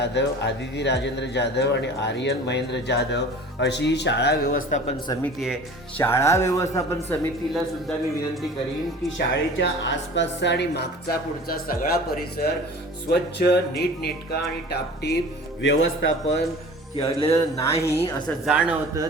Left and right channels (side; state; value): both; normal; correlation 0.42